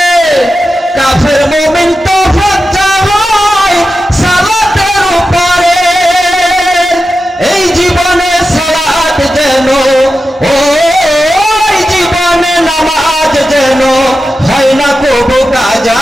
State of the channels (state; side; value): normal; both; correlation 0.91